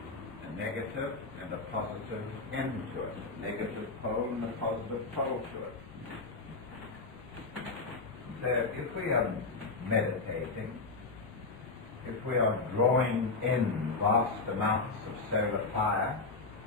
a negative and a positive end to it, a negative pole and a positive pole to it. So if we are meditating, if we are drawing in vast amounts of solar fire,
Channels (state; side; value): quieter; right; 3.8 dB